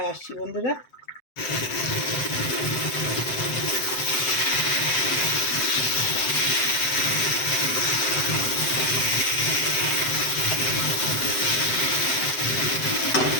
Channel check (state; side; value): late; right; 7.8 ms